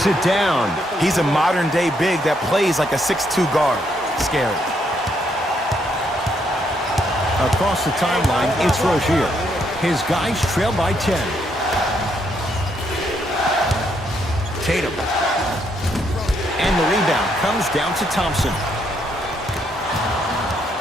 it down. He's a modern-day big that plays like a 6'2 guard. Scary. Across the timeline, it's Rozier. His guys trail by 10. Tatum. And the rebound comes down to Thompson.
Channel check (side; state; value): both; normal; correlation 0.74